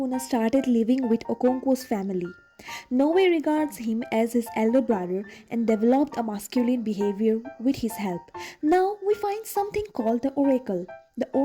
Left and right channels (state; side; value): identical; both; correlation 1.00